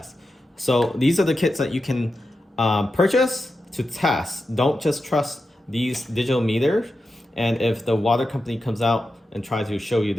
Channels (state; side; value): normal; both; correlation 0.90